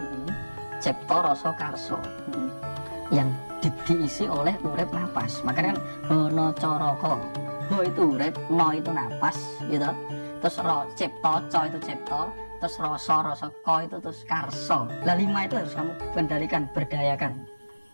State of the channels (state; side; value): inverted; both; correlation -1.00